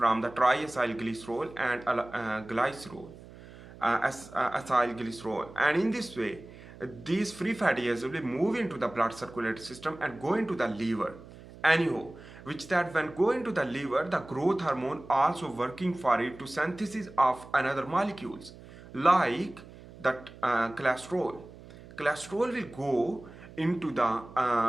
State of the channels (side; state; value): right; noise; hum, 18 dB below the sound